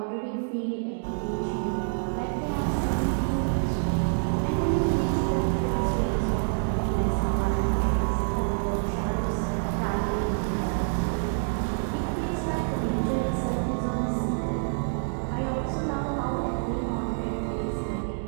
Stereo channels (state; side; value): silent; left; digital silence